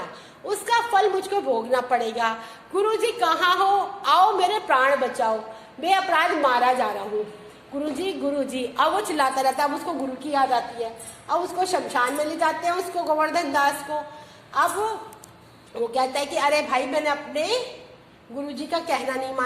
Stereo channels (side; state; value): both; identical; correlation 1.00